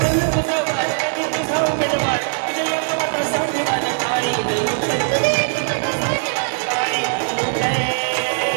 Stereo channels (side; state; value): left; silent; digital silence